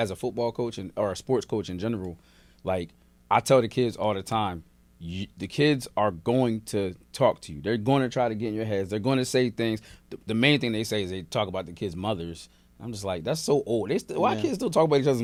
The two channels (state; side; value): identical; both; correlation 1.00